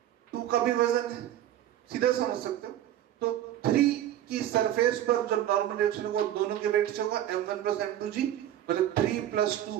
2 का भी वजन है, सीधा समझ सकते हो। तो 3 की सरफेस पर जो नॉर्मल रिएक्शन वो दोनों के वेट से होगा m1 प्लस m2g, मतलब 3 प्लस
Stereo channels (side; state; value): left; quieter; 12.1 dB